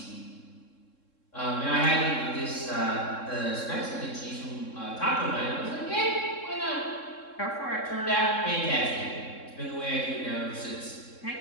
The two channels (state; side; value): late; right; 3.7 ms